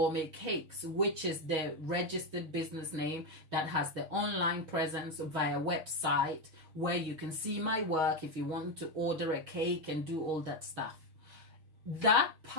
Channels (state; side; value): late; left; 6.3 ms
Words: Cakes, which is the registered business name that has the online presence via website where you can see my work if you want to order a cake and do all that stuff. That